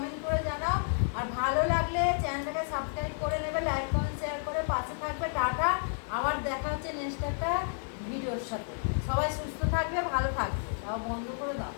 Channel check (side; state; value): right; silent; 57 dB below the other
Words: করে জানাও। আর ভালো লাগলে চ্যানেলটাকে সাবস্ক্রাইব করে নেবে, লাইক কমেন্ট শেয়ার করে পাশে থাকবে। টাটা, আবার দেখা হচ্ছে নেক্সট একটা ভিডিওর সাথে। সবাই সুস্থ থাকবে, ভালো থাকবে। তাও বন্ধ করে দাও,